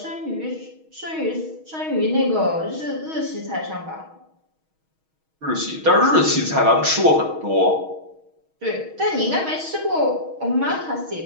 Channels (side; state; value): left; late; 6.3 ms